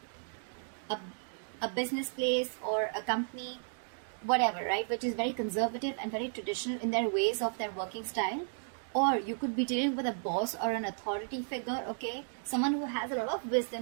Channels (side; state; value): left; silent; digital silence